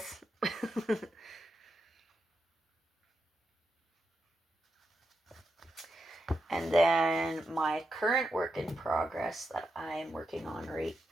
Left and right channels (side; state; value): both; normal; correlation 0.86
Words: And then my current work in progress that I'm working on right